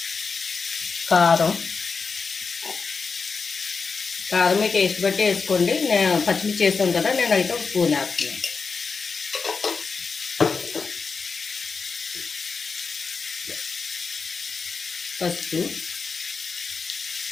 కారం మీ టేస్ట్ బట్టి వేసుకోండి. నేను పచ్చిమిర్చి వేసాను కదా, నేనైతే ఒక స్పూన్ వేస్తున్నాను. పసుపు,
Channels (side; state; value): right; quieter; 4.9 dB